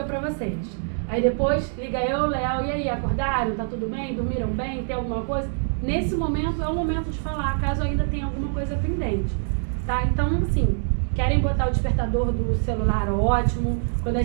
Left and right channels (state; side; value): silent; left; digital silence